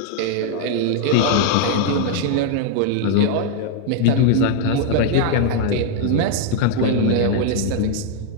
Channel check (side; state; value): both; different; correlation 0.00